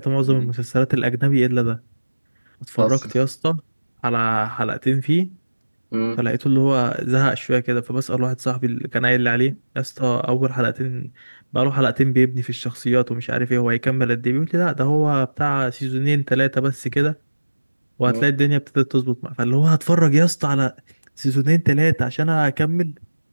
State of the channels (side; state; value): both; inverted; correlation -1.00